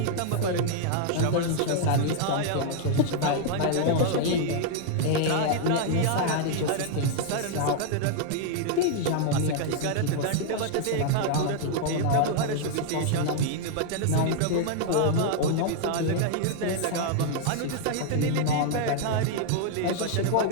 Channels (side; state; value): both; different; correlation 0.00